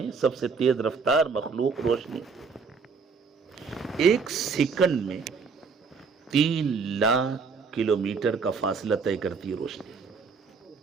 سب سے تیز رفتار مخلوق روشنی. 1 سیکنڈ میں 3 لاکھ کلومیٹر کا فاصلہ طے کرتی ہے روشنی.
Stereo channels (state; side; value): quieter; left; 5.1 dB